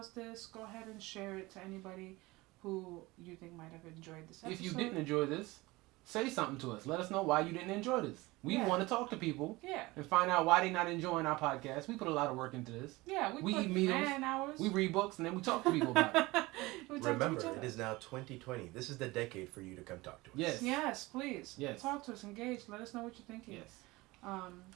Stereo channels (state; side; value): quieter; left; 21.4 dB